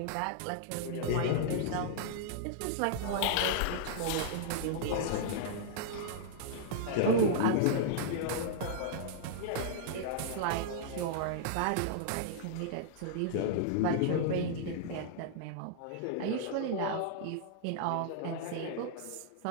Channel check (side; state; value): both; different; correlation -0.02